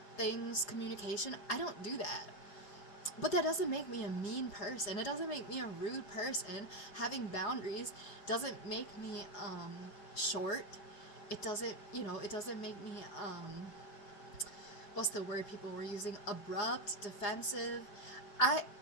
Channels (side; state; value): right; late; 5.5 ms